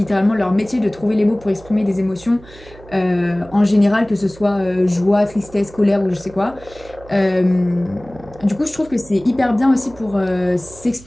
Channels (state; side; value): noise; right; hum, 21 dB below the sound